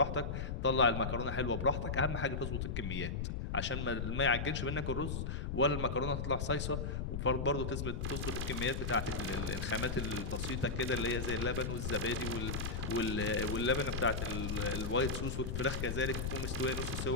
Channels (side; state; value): left; noise; rumble, 2 dB below the sound